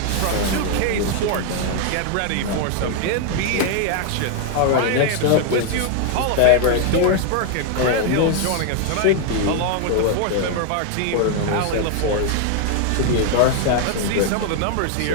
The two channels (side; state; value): both; different; correlation 0.00